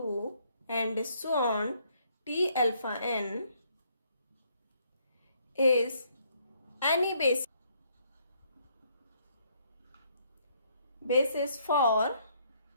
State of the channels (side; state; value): both; inverted; correlation -0.69